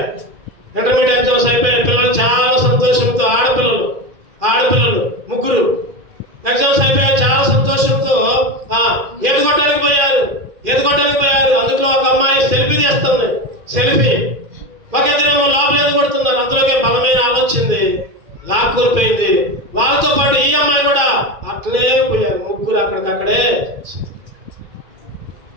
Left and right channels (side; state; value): left; late; 2.4 ms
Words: పిల్లలు చాలా సంతోషంతో, ఆడపిల్లలు 3 ఎగ్జామ్స్ అయిపోయాయి. చాలా సంతోషంతో ఎదుగొట్టడానికి పోయారు. అందులో ఒక అమ్మాయి సెల్ఫీ తీస్తుంది. ఒక ఇద్దరేమో లోపల ఎదుగొడుతున్నారు. అందులోకే బలమైన ఆలోచింది, లాక్కుపోయింది. వాళ్ళతో పాటు ఈ అమ్మాయి కూడా అట్లనే పోయారు. 3 అక్కడికక్కడే.